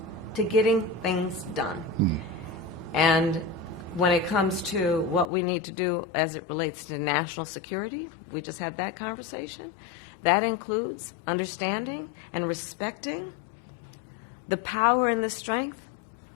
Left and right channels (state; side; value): drops out; right; at 5.2 s